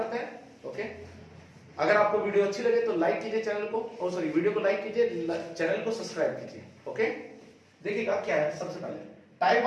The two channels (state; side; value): identical; both; correlation 1.00